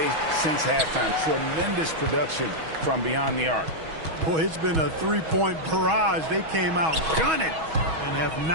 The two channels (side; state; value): left; late; 6.2 ms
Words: since halftime. Tremendous production from beyond the arc. Boy, it's been a three-point barrage. They came out gunning and have